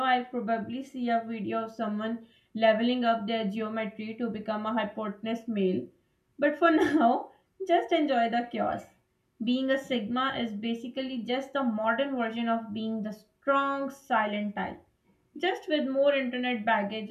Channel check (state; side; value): identical; both; correlation 1.00